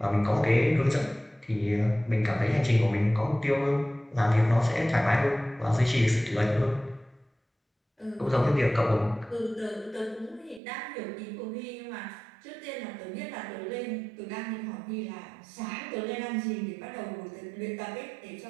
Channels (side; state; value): left; drops out; at 10.6 s